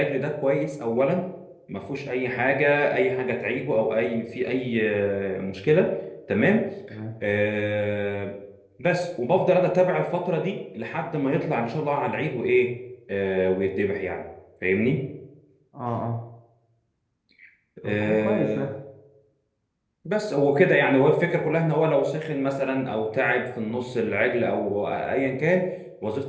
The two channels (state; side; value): identical; both; correlation 1.00